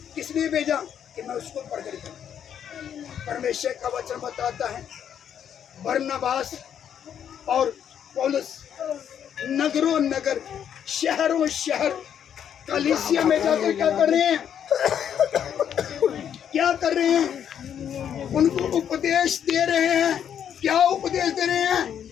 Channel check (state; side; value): quieter; right; 8.9 dB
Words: किस लिए भेजा कि मैं उसको प्रकट करूं। परमेश्वर का वचन बताता है बरनबास और पौलुस नगरों नगर, शहरों शहर, कलीसिया में जाकर क्या कर रहे हैं, क्या कर रहे हैं, उनको उपदेश दे रहे हैं। क्या उपदेश दे रहे हैं?